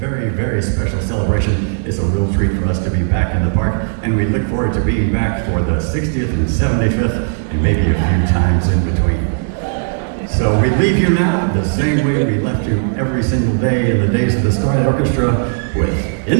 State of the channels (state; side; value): silent; left; digital silence